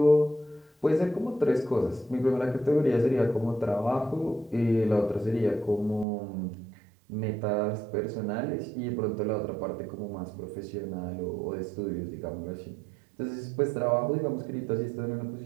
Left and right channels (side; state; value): left; drops out; at 6.1 s